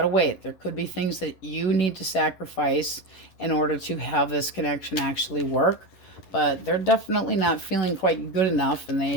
to wait. There could be things that you need to sacrifice in order to have this connection actually work. But they're definitely not feeling quite good enough, and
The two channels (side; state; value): right; late; 11 ms